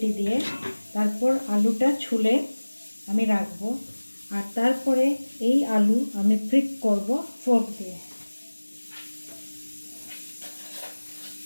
দিয়ে। তারপর আলুটা ছুলে আমি রাখবো, আর তারপরে এই আলু আমি প্রিক করব ফোর্ক দিয়ে।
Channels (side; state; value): both; inverted; correlation -1.00